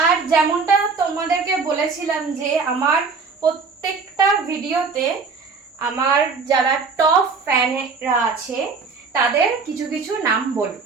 আর যেমনটা তোমাদেরকে বলেছিলাম যে আমার প্রত্যেকটা ভিডিওতে আমার যারা টপ ফ্যানেরা আছে তাদের কিছু কিছু নাম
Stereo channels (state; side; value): quieter; left; 4.8 dB